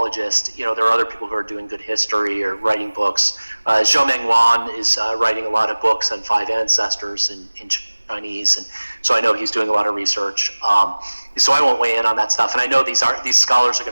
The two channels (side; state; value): both; inverted; correlation -1.00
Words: There are other people who are doing good history or writing books. Zhou Mengwan is writing a lot of books on five ancestors in Chinese, and so I know he's doing a lot of research. So I won't weigh in on that stuff. And I know these scholars are